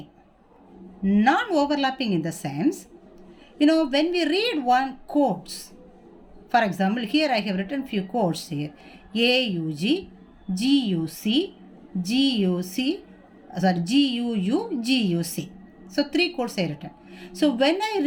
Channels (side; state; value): both; identical; correlation 1.00